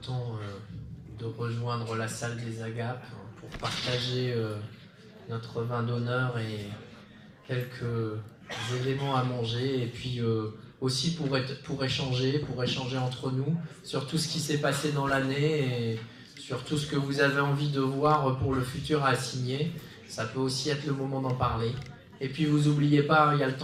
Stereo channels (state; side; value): identical; both; correlation 1.00